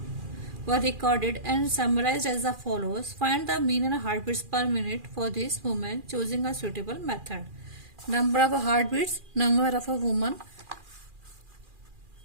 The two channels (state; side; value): late; left; 2.4 ms